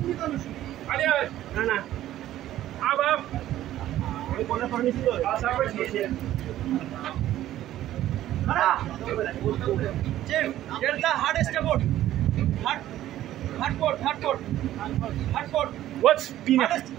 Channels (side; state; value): left; quieter; 13.4 dB